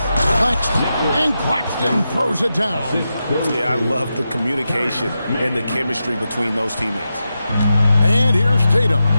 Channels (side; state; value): both; inverted; correlation -0.89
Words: Claxton, and Claxton throws it down. Yeah, I love the communication and the chemistry between those teammates. And here's Tatum.